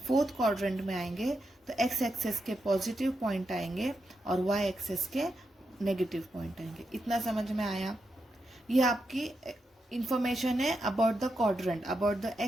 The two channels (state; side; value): normal; both; correlation 0.85